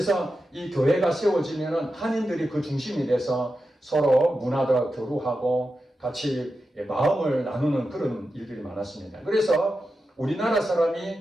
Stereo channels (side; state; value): both; normal; correlation 0.90